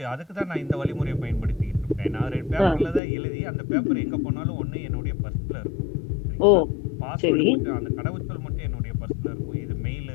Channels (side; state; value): right; drops out; at 3.0 s